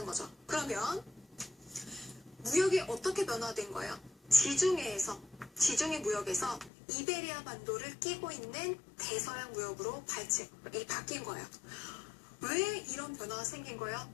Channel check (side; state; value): right; drops out; at 6.7 s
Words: 거죠. 그러면 무역이 어떻게 변화된 거예요? 지중해 무역에서 이베리아 반도를 끼고 있는 대서양 무역으로 바뀐 거예요. 왜 이런 변화가 생긴 거예요?